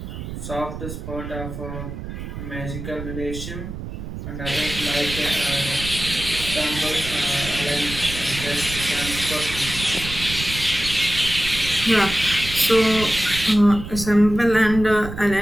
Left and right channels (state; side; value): noise; right; rumble, 8 dB below the sound